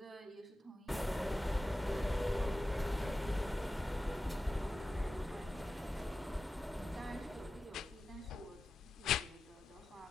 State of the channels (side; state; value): both; normal; correlation 0.93